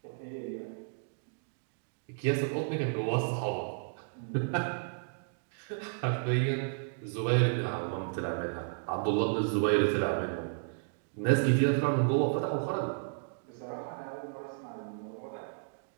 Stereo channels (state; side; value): silent; left; digital silence